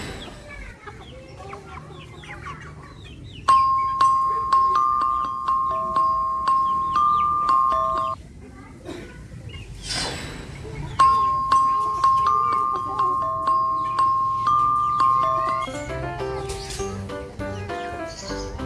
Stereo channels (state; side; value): identical; both; correlation 1.00